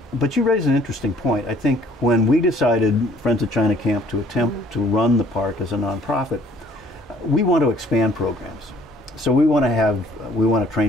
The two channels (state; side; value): normal; both; correlation 0.59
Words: But you raise an interesting point. I think when we decided, Friends of China Camp, to attempt to run the park as a nonprofit, we want to expand programs. So we want to